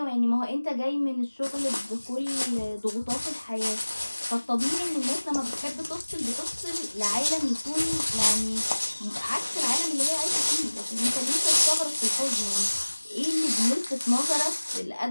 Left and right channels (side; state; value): both; inverted; correlation -1.00